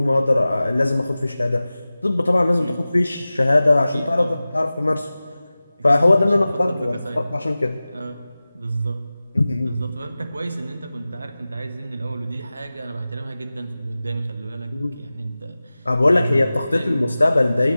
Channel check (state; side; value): inverted; both; correlation -0.96